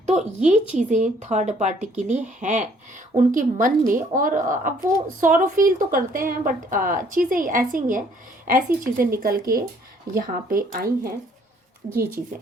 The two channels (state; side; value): normal; both; correlation 0.62